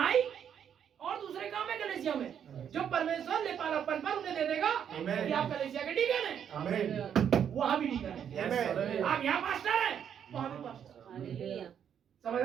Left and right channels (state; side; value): quieter; left; 8.6 dB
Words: और दूसरे काम है कलीसिया में, जो परमेश्वर लेपालापन पर उन्हें दे देगा कि आप कलीसिया के डीकन हैं। आमीन। वहां भी डीकन है। आप यहाँ पास्टर हैं, वहां भी पास्टर। समझ